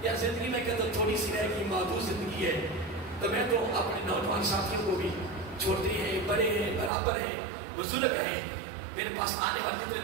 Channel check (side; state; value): left; drops out; at 6.9 s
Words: یا زندگی میں کہتا تھوڑی سی رہے گی, محدود زندگی ہے, تو میں تو اپنے نوجوان ساتھیوں کو بھی چھوٹے ہیں, بڑے ہیں, برابر ہیں, بزرگ ہیں, میرے پاس آنے والے جتنے